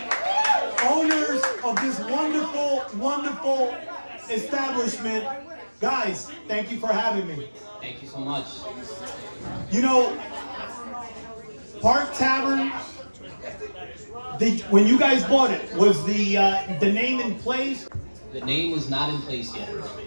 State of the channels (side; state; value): both; inverted; correlation -1.00